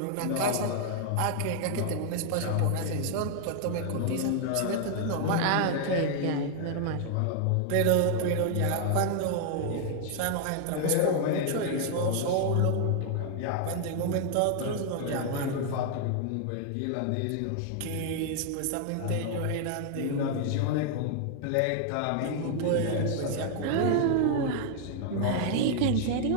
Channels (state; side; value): different; both; correlation 0.00